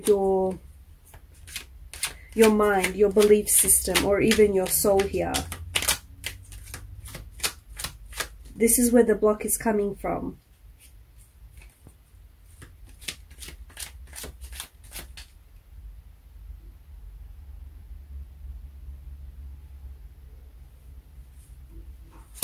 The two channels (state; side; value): identical; both; correlation 1.00